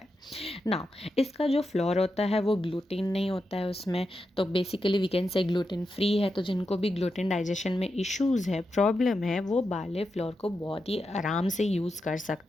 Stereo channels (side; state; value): both; normal; correlation 0.87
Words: नाउ इसका जो फ्लोर होता है वो ग्लूटीन नहीं होता है उसमें, तो basically we can say gluten free है. तो जिनको भी ग्लूटेन डाइजेशन में इश्यूज़ है, प्रॉब्लम है, वो बार्ले फ्लोर को बहुत ही आराम से यूज़ कर